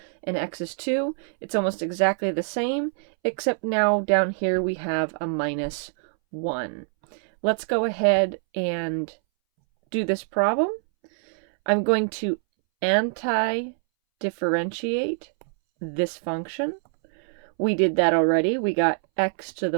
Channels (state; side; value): silent; left; 62 dB below the other